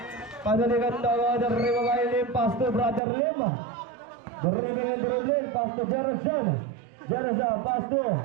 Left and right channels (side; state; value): left; drops out; at 3.0 s